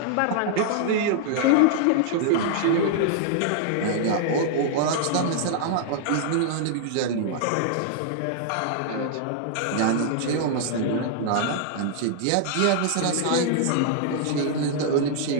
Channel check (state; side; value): different; both; correlation -0.01